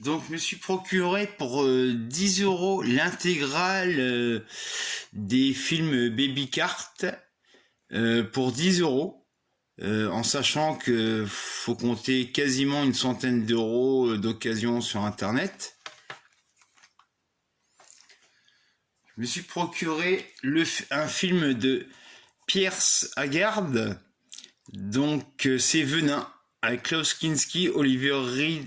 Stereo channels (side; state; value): both; identical; correlation 1.00